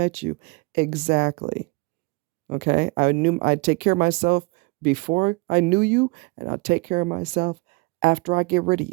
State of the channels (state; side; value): quieter; left; 27.4 dB